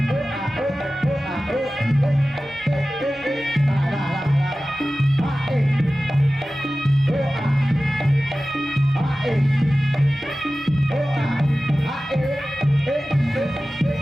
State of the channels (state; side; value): normal; both; correlation 0.96